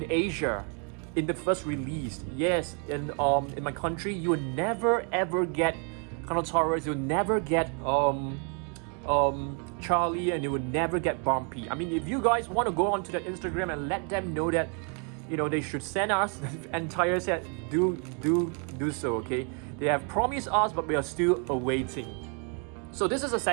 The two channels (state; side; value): quieter; left; 38.6 dB